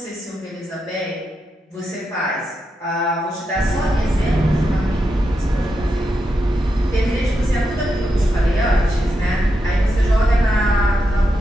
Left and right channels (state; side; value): normal; both; correlation 0.86